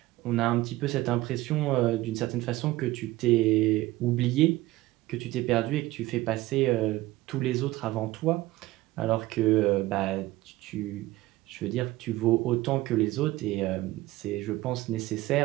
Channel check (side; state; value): left; quieter; 17.8 dB